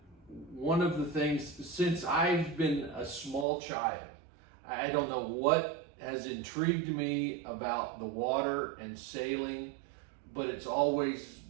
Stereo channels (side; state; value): left; drops out; at 3.5 s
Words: one of the things, since I've been a small child, I don't know what has intrigued me about the water and sailing, but it's always